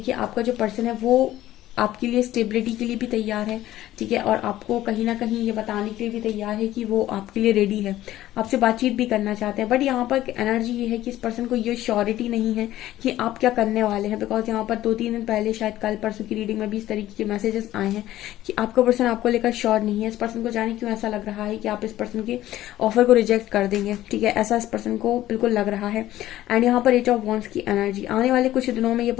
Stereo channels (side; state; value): right; quieter; 14.3 dB